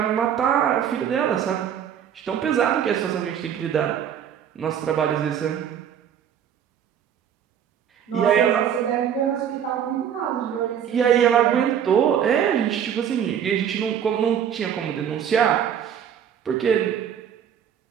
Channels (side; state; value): left; quieter; 8.9 dB